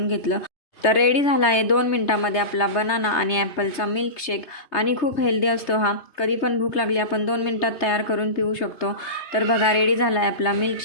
घेतलं. तर रेडी झाला आहे 2 मिनटामध्ये आपला बनाना आणि ॲपलचा मिल्कशेक. आणि खूप हेल्दी असतो हा. कधी पण भूक लागली आपण 2 मिनटात तयार करून पिऊ शकतो. तर बघा, रेडी झाला आहे आपला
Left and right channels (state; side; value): late; right; 3.3 ms